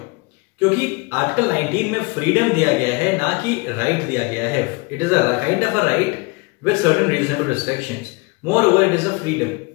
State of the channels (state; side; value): quieter; right; 27.0 dB